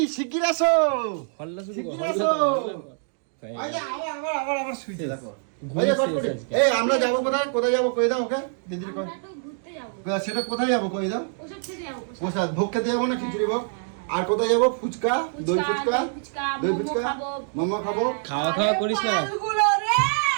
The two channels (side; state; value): left; silent; 62 dB below the other